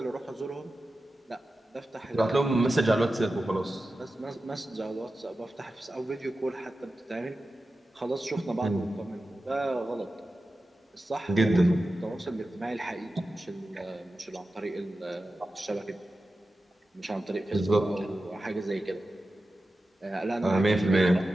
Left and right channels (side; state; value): both; normal; correlation 0.93